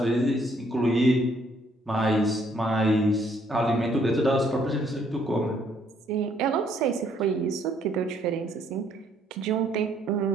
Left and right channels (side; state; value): both; normal; correlation 0.67